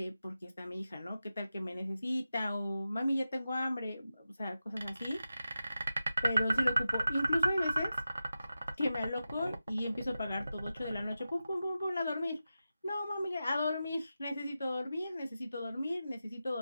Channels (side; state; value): both; inverted; correlation -0.92